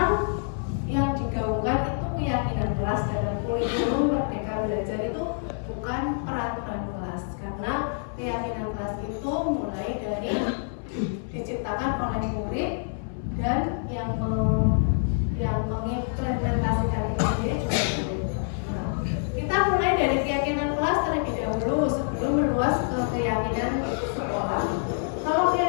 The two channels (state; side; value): silent; right; 60 dB below the other